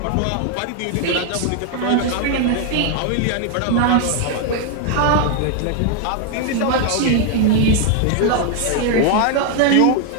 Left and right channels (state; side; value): different; both; correlation 0.00